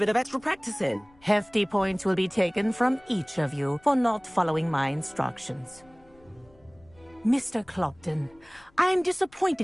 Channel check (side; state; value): left; noise; rumble, 29 dB below the sound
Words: of extra practice in. Hefty points will be taken from each of you for not following my instructions. Mr. Clopton, I am